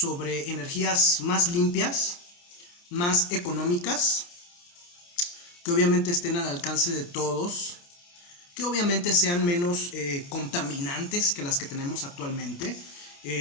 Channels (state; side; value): late; right; 29 ms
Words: energías más limpias, más económicas, que obviamente estén al alcance de todos, que obviamente sean menos contaminantes que las que tenemos actualmente.